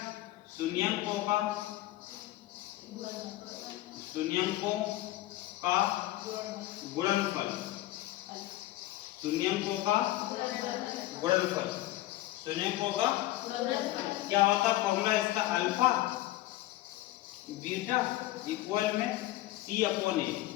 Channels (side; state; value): right; quieter; 16.2 dB